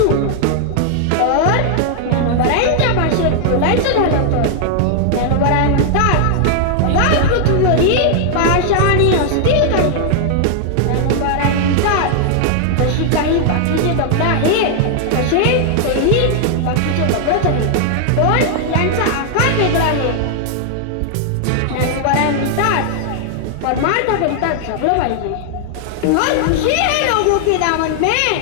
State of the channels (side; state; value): both; different; correlation -0.01